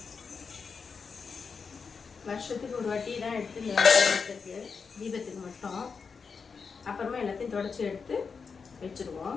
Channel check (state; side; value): quieter; right; 5.4 dB